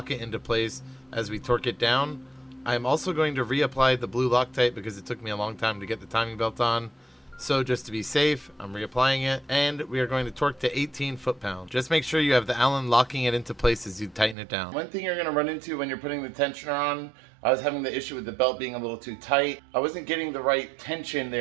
it into place as we torque it down. I'm also going to reapply the blue Loctite because it took me a long time to get the timing belt on. So just to be safe, I'm reapplying it, and we are going to torque to 18 foot-pounds. Just make sure you have the Allen locking it into place as you tighten it down. One thing you're going to run into when you're putting the tensioner on, I was having the issue with the belt being a little too tight. I wasn't getting the right tension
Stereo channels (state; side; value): drops out; left; at 14.4 s